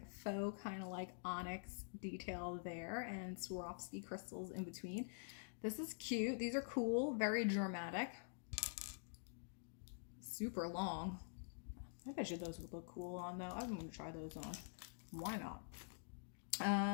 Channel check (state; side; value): silent; right; digital silence